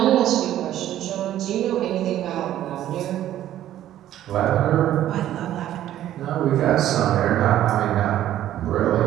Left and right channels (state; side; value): quieter; left; 12.5 dB